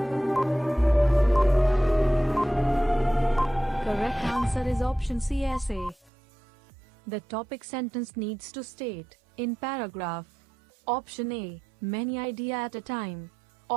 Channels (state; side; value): drops out; left; at 6.1 s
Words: Correct answer is option C, essay. The topic sentence needs to state, in paragraph. Option A, many ideas at a time.